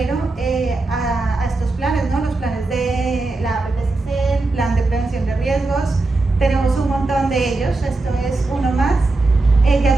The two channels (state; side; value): quieter; left; 3.2 dB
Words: a estos planes, ¿no? Los planes de la PPCC, el plan de prevención de riesgos. Tenemos un montón de ellos, esto es uno más. Ya